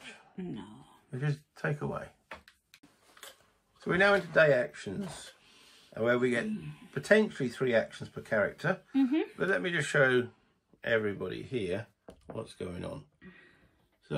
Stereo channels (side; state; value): both; identical; correlation 1.00